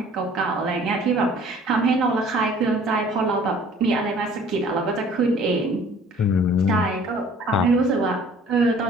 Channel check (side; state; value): both; normal; correlation 0.52